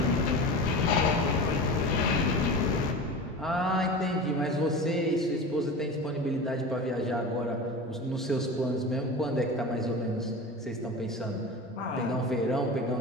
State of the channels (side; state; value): both; normal; correlation 0.31